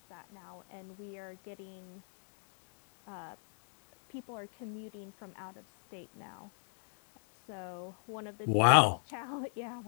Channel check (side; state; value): right; silent; digital silence